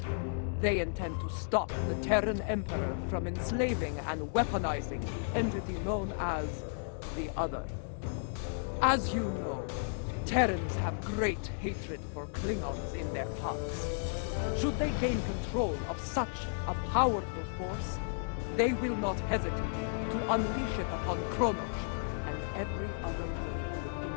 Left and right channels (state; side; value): silent; right; digital silence